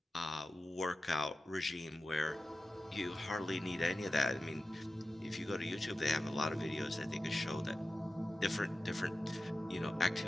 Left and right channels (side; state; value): both; normal; correlation 0.94